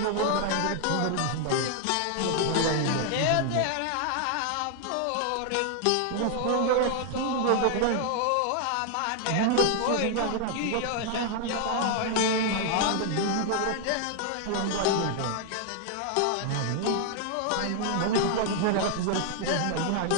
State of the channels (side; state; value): both; different; correlation 0.00